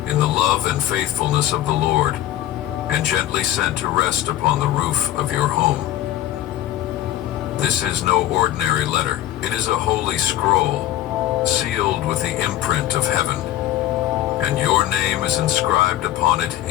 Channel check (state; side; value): quieter; right; 13.5 dB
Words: in the love and faithfulness of the Lord and gently sent to rest upon the roof of your home. This is no ordinary letter. It is a holy scroll, sealed with the imprint of heaven, and your name is inscribed upon it